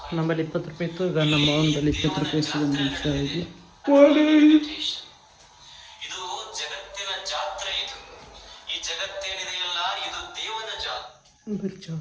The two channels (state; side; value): identical; both; correlation 1.00